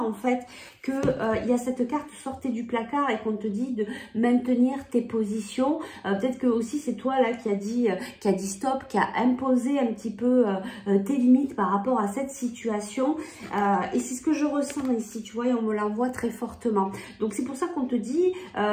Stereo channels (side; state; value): both; identical; correlation 1.00